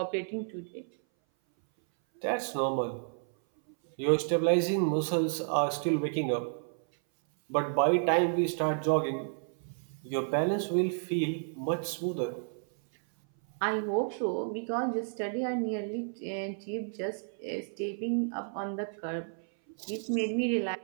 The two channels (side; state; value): left; silent; 57 dB below the other